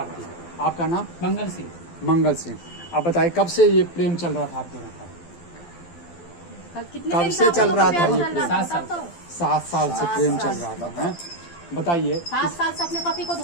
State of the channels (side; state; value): right; late; 12 ms